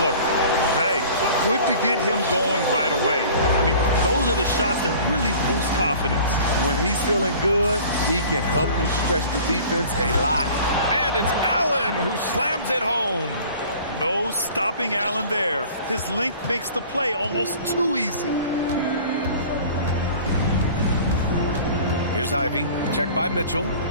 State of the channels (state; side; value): inverted; both; correlation -0.45